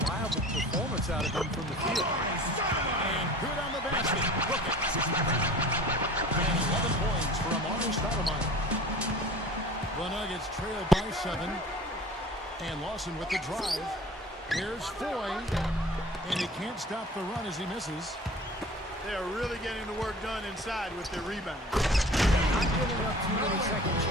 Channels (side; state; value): both; normal; correlation 0.42